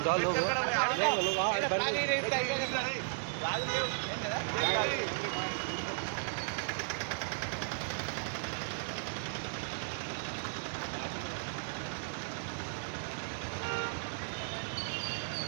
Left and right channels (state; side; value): silent; left; digital silence